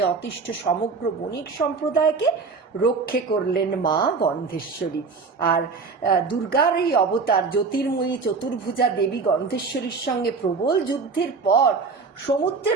অতিষ্ঠ সমগ্র বণিক সম্প্রদায়কে রক্ষে করলেন মা গন্ধেশ্বরী। আর দুর্গার এই অবতার জ্যোতির্ময়ী চতুর্ভুজা দেবী গন্ধেশ্বরীর সঙ্গে প্রবল যুদ্ধের পর সমুদ্রে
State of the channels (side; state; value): left; quieter; 4.6 dB